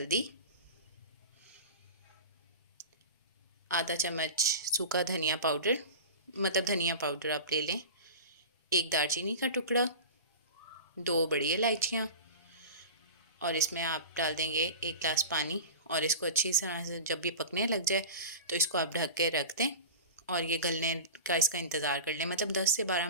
आधा चम्मच सूखा धनिया पाउडर, मतलब धनिया पाउडर आप ले लें, 1 दालचीनी का टुकड़ा, 2 बड़ी इलायचियाँ, और इसमें आप डाल देंगे 1 गिलास पानी। और इसको अच्छी तरह से जब ये पकने लग जाए तो इसको आप ढक के रख दें और ये गलने का इसका इंतज़ार कर लें। मतलब 10 से 12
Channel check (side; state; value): both; inverted; correlation -0.32